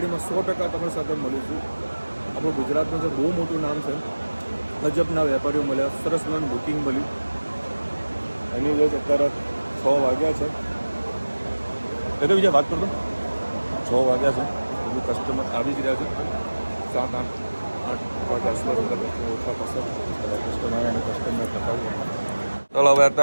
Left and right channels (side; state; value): both; inverted; correlation -1.00